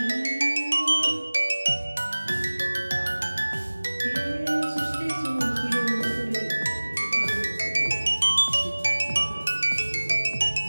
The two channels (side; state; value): both; inverted; correlation -1.00